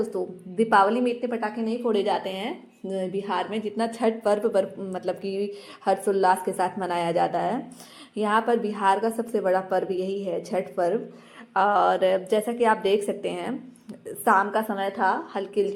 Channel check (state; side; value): identical; both; correlation 1.00